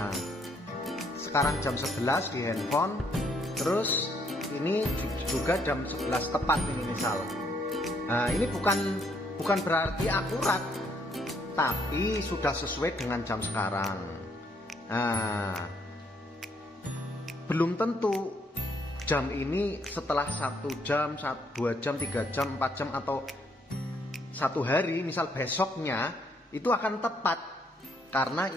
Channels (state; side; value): normal; both; correlation 0.70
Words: sekarang jam 11 di handphone, terus ini juga jam 11 tepat ini misal. Nah, ini bukan berarti akurat, tapi sudah sesuai dengan jam sekarang. Nah, belum tentu jam ini setelah 1 jam, 2 jam, 3 jam, 4 jam atau 1 hari, misal besoknya itu akan tepat, karena